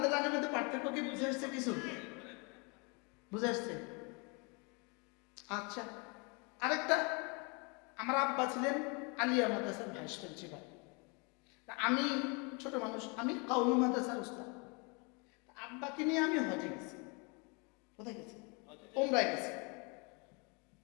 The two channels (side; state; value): right; quieter; 31.9 dB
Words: লাইনের মধ্যে পার্থক্য কি বুঝে আসছে? কিছু বুঝে আসছে? আচ্ছা, আরেকটা, আমার আব্বা ছিলেন আলিয়া মাদ্রাসার ভাইস প্রিন্সিপাল। আমি ছোট মানুষ, আমি কওমি মাদ্রাসার উস্তাদ। আব্বাকে নিয়ে আমি হজে গেছি। কোথায় গেছি? ওমরায় গেছি।